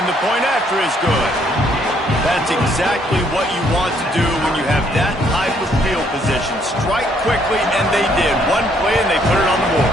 the point after is good. That's exactly what you want to do when you have that type of field position. Strike quickly, and they did. One play, and they put it on the board.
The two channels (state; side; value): normal; both; correlation 0.68